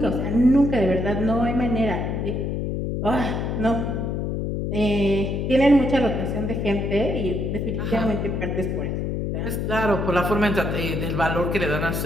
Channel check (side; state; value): left; noise; hum, 1 dB below the sound